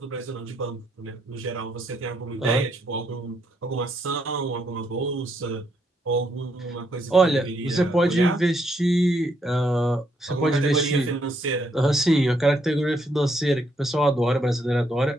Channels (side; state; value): both; normal; correlation 0.74